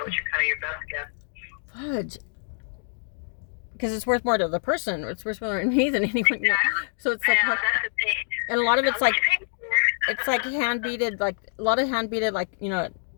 what your best guess. Fudge. Because it's worth more to the person. It's worth more to me than anyone. So it's like, Yeah, that's the thing. and a lot of it's like, It's hand beaded, like a lot of hand beaded, like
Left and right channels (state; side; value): silent; right; digital silence